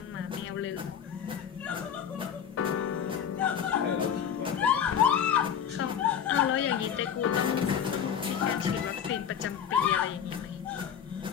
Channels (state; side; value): quieter; right; 8.4 dB